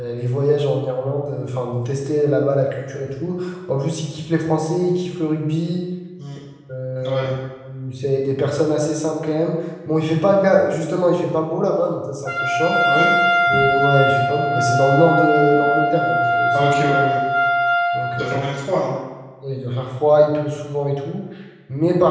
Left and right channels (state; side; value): identical; both; correlation 1.00